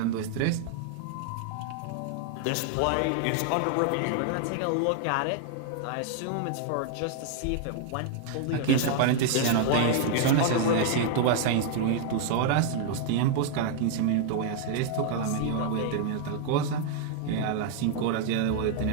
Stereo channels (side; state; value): both; different; correlation 0.00